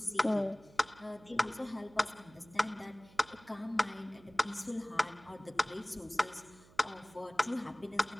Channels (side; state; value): right; noise; hum, 24 dB below the sound